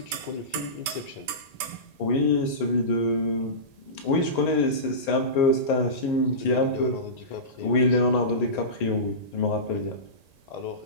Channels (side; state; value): right; late; 1.9 ms